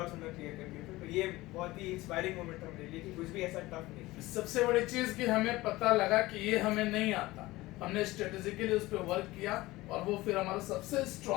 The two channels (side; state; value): right; quieter; 19.1 dB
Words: उन्होंने क्लियर कर दिए थे। तो ये बहुत ही इंस्पायरिंग मोमेंट था मेरे लिए कि कुछ भी ऐसा टफ नहीं। सबसे बड़ी चीज कि हमें पता लगा कि ये हमें नहीं आता, हमने स्ट्रेटेजिकली उस पर वर्क किया और वो फिर हमारा सबसे